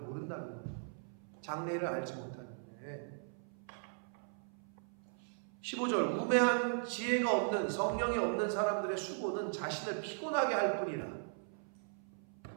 거예요. 장래일을 알지 못하는데. 15절, 우매한 지혜가 없는, 성령이 없는 사람들의 수고는 자신을 피곤하게 할 뿐이라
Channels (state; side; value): silent; left; 52 dB below the other